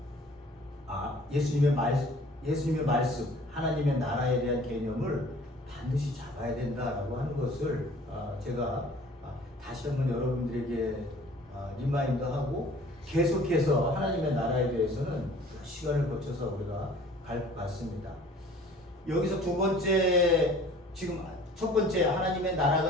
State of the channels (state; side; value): normal; both; correlation 0.50